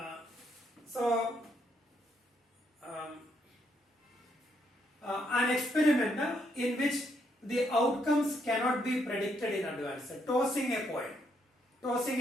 An experiment in which the outcomes cannot be predicted in advance. Tossing a coin.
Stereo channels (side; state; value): both; normal; correlation 0.75